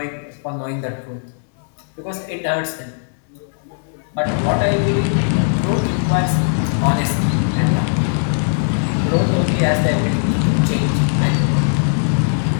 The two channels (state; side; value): silent; right; digital silence